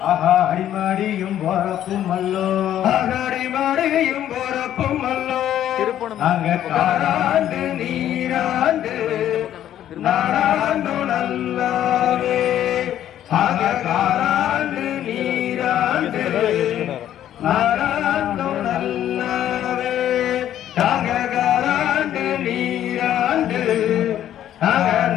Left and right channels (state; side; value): quieter; right; 11.4 dB